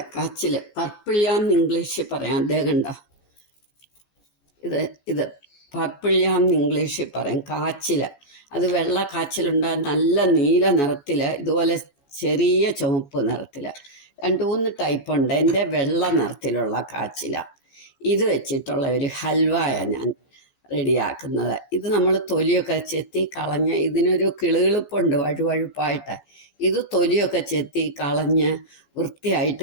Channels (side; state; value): right; late; 14 ms